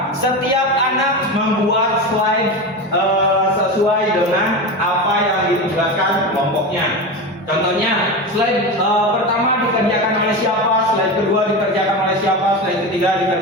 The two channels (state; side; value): normal; both; correlation 0.22